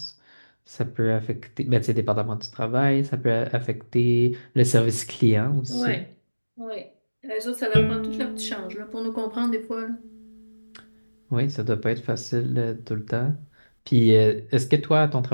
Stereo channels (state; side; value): inverted; both; correlation -1.00